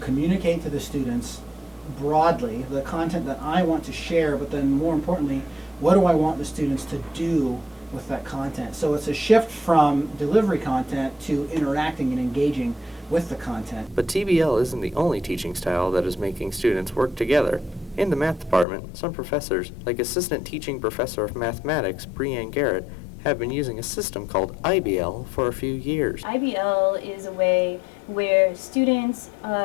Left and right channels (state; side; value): drops out; right; at 18.7 s